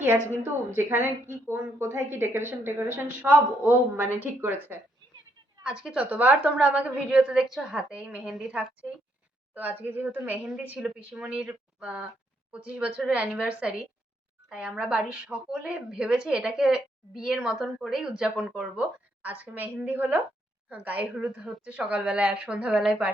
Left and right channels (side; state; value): both; normal; correlation 0.74